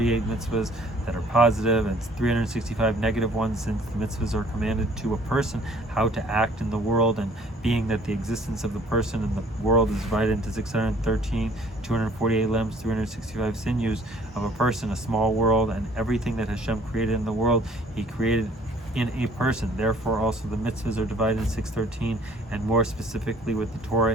mitzvahs that are positive, and 365 negative ones, since the mitzvahs are commanded to a person how to act in the world, and being that the existence of the person in the world is divided into 613, 248 limbs, 365 sinews of a person, a small world, and everything that Hashem created in the world, he created in a person. Therefore also the mitzvahs are divided in 613, and more specifically with the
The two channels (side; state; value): both; normal; correlation 0.56